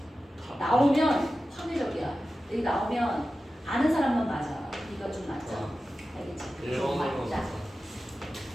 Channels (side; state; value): both; normal; correlation 0.94